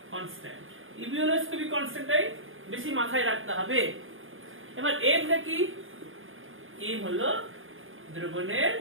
কনস্ট্যান্ট। ইবিউলোস্কোপিক কনস্ট্যান্টটাই বেশি মাথায় রাখতে হবে। এবার এমটা কি? এম হলো দ্রবণের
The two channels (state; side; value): late; left; 0.59 ms